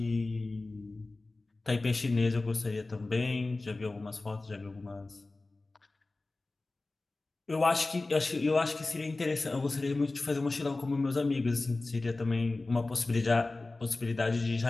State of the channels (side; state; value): right; quieter; 3.2 dB